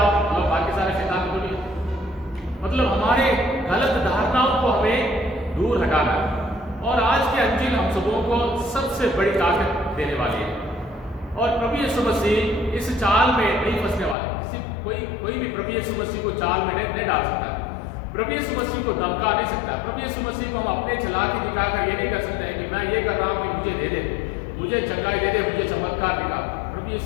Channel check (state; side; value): drops out; right; at 14.2 s